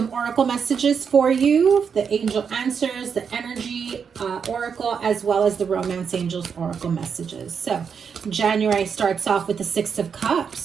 oracle messages for you, the angel answers, the energy oracle, as well as the romance angels oracle messages. So January starts off with the Six of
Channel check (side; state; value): left; quieter; 6.6 dB